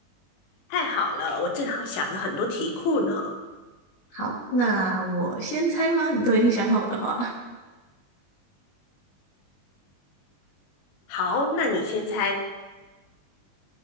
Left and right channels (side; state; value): right; late; 21 ms